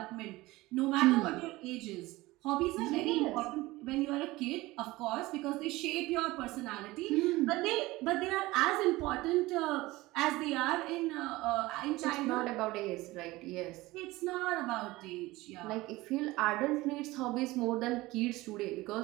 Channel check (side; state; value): left; quieter; 19.6 dB